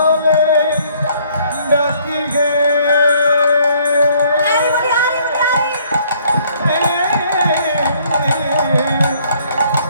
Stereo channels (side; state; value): both; inverted; correlation -0.62